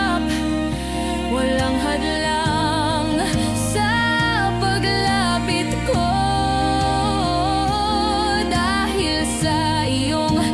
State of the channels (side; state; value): both; identical; correlation 1.00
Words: walang hadlang sa paglapit ko, dahil sa iyong